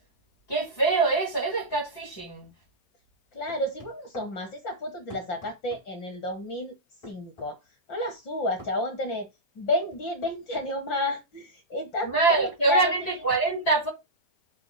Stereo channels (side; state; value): right; late; 5.8 ms